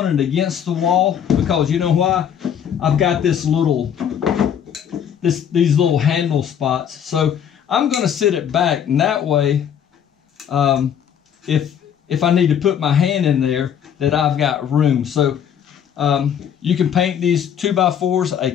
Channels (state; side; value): quieter; right; 8.7 dB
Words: it against the wall, because you know why? I've got these little handle spots. So I'm going to sit it back, and that way if I need to put my hand in there, that I've got room. So you can paint these 2x4s a